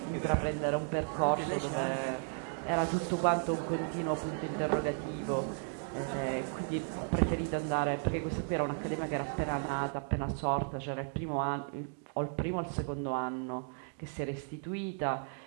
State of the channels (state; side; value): silent; left; 55 dB below the other